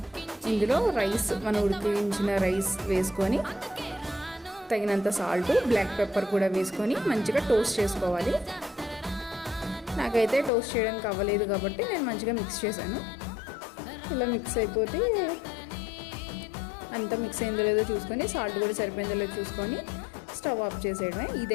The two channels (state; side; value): drops out; right; at 10.5 s